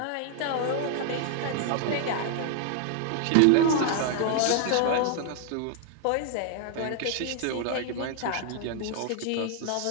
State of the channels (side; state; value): both; different; correlation 0.00